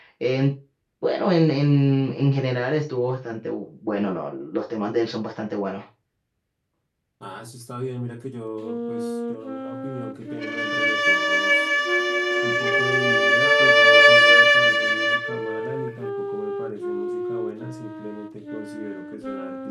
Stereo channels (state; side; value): identical; both; correlation 1.00